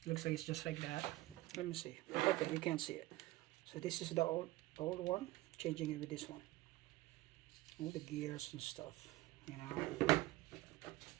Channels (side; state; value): left; quieter; 18.4 dB